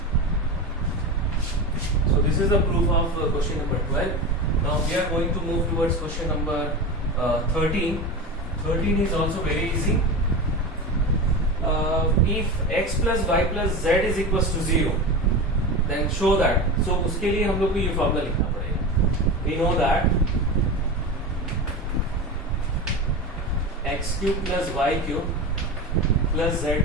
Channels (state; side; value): normal; both; correlation 0.25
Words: So this is the proof of question number 12. Now we are going to move towards question number 13. 13 is also very easy. If x plus y plus z is equals to 0, then show that. So उसके लिए हम लोग को ये formula लिखना पड़ेगा. We know that x cube plus y cube plus z